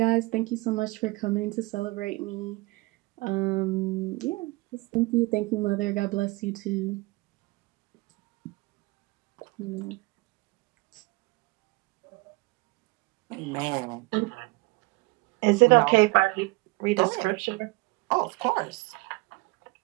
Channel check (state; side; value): quieter; left; 23.5 dB